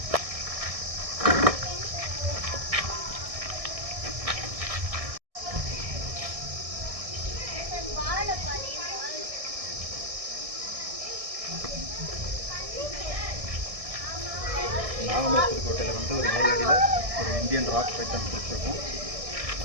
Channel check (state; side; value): late; left; 1.6 ms